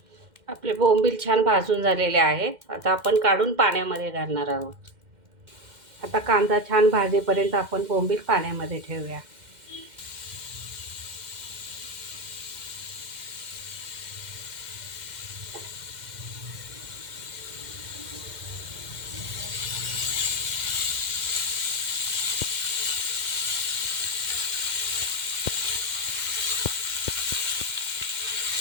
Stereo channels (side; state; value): left; late; 2.1 ms